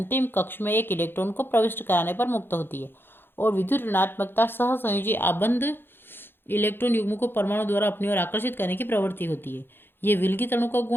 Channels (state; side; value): late; right; 0.10 ms